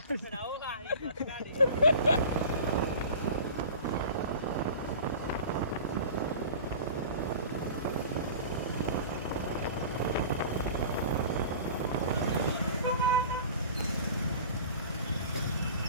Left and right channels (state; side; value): inverted; both; correlation -0.39